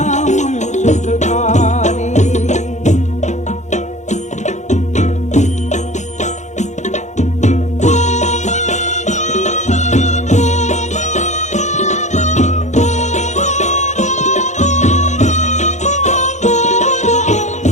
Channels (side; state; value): right; late; 0.34 ms